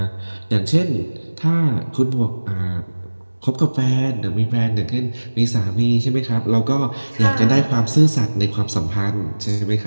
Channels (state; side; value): inverted; both; correlation -1.00